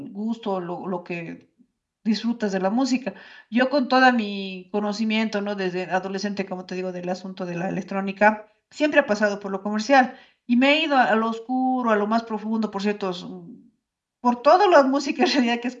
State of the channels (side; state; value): both; identical; correlation 1.00